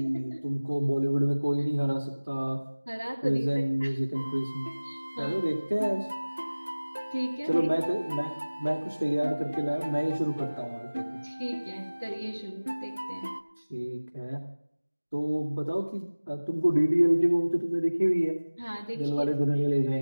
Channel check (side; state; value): both; inverted; correlation -1.00